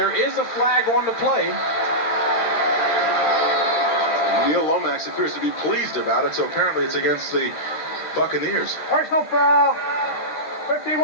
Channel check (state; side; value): late; right; 13 ms